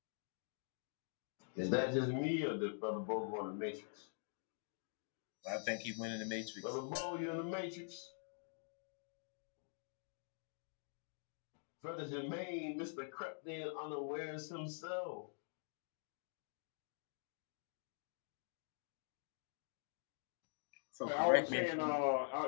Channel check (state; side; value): silent; right; digital silence